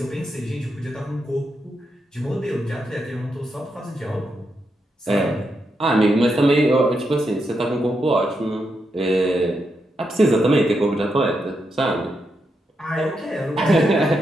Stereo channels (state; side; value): normal; both; correlation 0.83